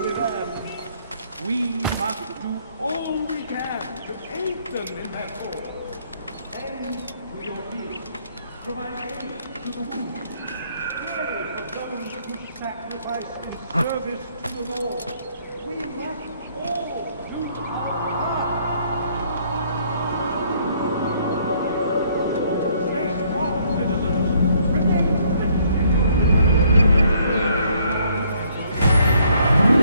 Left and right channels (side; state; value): both; inverted; correlation -0.66